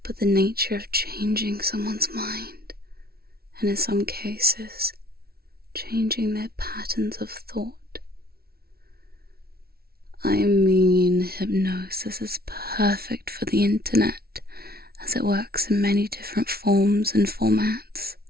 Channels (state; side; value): late; left; 0.44 ms